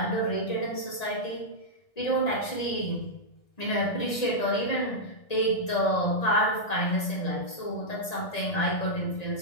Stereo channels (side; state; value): right; late; 1.8 ms